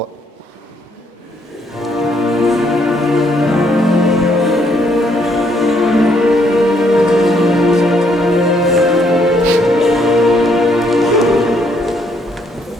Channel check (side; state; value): both; normal; correlation 0.70